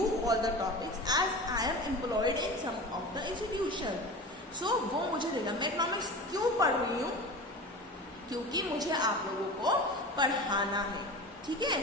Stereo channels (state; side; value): normal; both; correlation 0.32